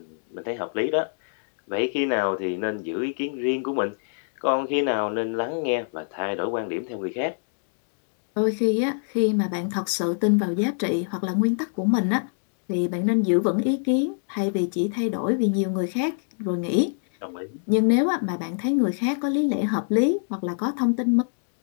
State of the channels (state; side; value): silent; right; digital silence